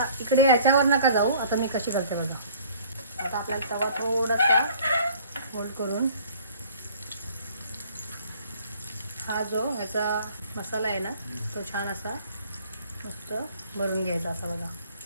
इकडे याच्यावर नका जाऊ, आता मी कशी करते बघा. आता आपल्याला तवा थोडासा होल्ड करून हा जो ह्याचा मसाला आहे ना तो छान असा मस्त भरून घ्यायचा असा बघा,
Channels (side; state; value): both; inverted; correlation -0.53